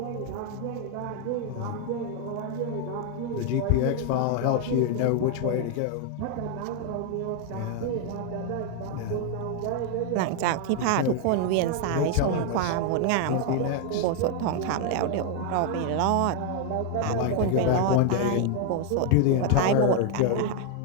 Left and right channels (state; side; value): different; both; correlation 0.00